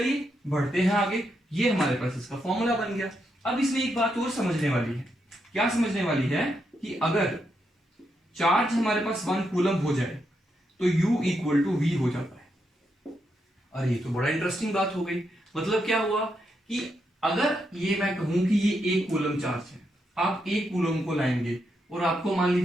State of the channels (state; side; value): normal; both; correlation 0.81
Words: बढ़ते हैं आगे। ये हमारे पास इसका फॉर्मूला बन गया। अब इसमें एक बात और समझने वाली है। क्या समझने वाली है? कि अगर चार्ज हमारे पास 1 कूलम हो जाए तो U इक्वल टू V हो जाता है। अरे ये तो बड़ा इंटरेस्टिंग बात हो गई। मतलब क्या हुआ कि अगर ये मैं कहूं कि ये 1 कूलम चार्ज है, आप 1 कूलम को लाएंगे और आपको मान